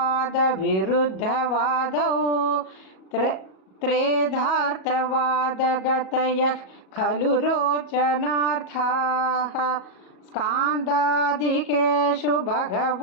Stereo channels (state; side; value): late; right; 37 ms